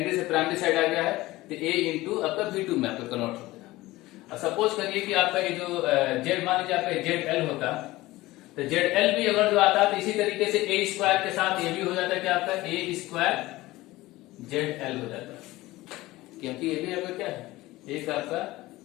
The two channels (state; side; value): quieter; right; 18.5 dB